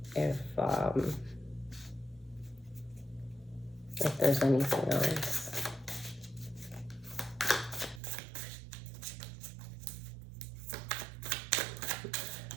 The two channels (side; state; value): left; drops out; at 8.0 s